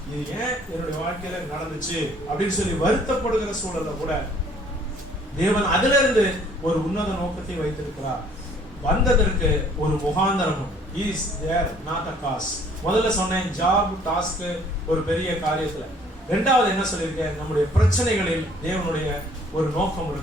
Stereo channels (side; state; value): both; normal; correlation 0.58